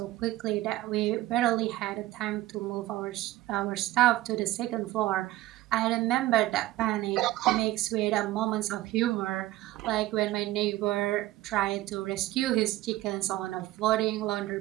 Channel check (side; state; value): left; quieter; 16.5 dB